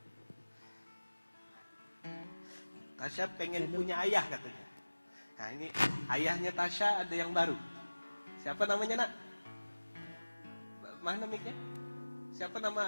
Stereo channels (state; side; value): inverted; both; correlation -1.00